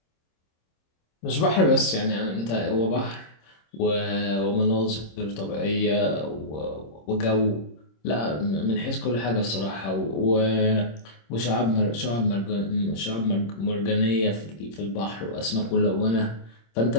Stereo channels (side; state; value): right; late; 26 ms